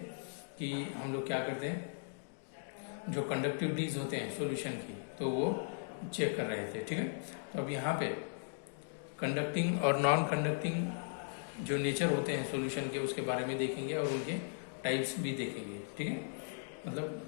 कि हम लोग क्या करते हैं, जो कंडक्टिविटीज होते हैं सॉल्यूशन की, तो वो चेक कर रहे थे। ठीक है, तो अब यहाँ पे कंडक्टिंग और नॉन कंडक्टिंग जो नेचर होते हैं सॉल्यूशन के, उसके बारे में देखेंगे और उनके टाइप्स भी देखेंगे। ठीक है,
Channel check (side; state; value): right; silent; digital silence